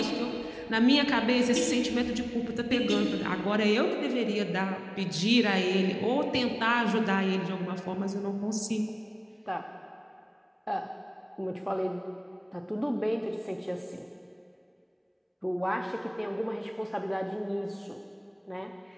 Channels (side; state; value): both; identical; correlation 1.00